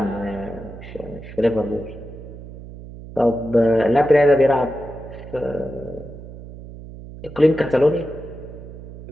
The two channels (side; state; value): right; noise; hum, 14 dB below the sound